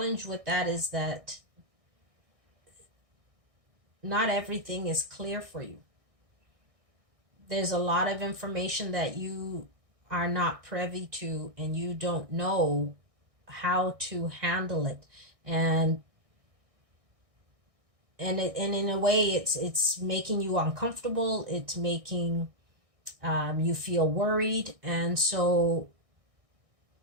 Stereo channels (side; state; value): left; late; 1.6 ms